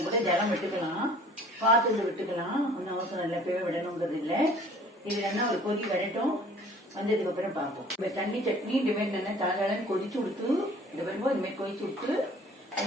கூட ஜலம் விட்டுக்கலாம், பார்த்து விட்டுக்கலாம். ஒன்றும் அவசரம் இல்லை, பேவை விடணுங்கிறது இல்லை. இது நல்லா ஒரு கொதி வரட்டும். வந்ததுக்கு அப்புறம் பார்ப்போம். இப்போ தண்ணி சட்னி இந்தமாரி நல்லா தலன்னு கொதிச்சு விட்டு இந்த வரும்போது இந்தமாரி கொதிச்சு விட்டு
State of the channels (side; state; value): both; normal; correlation 0.51